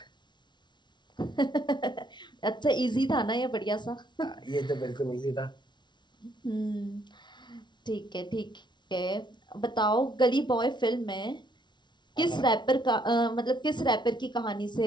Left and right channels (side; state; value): right; late; 0.22 ms